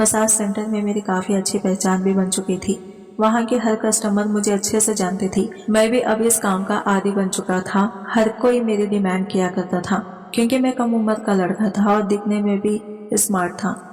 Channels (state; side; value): identical; both; correlation 1.00